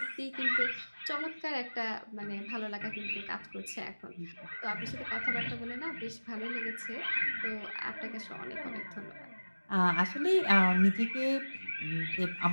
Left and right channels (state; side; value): inverted; both; correlation -1.00